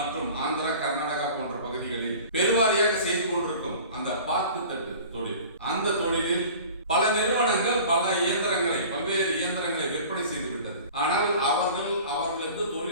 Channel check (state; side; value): inverted; both; correlation -0.43